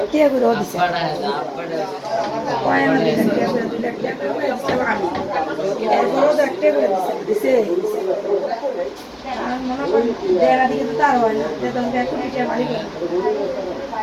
করে দিছে মনে করেন দেড়া দিকে তো তার হয় না মালিক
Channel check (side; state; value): both; identical; correlation 1.00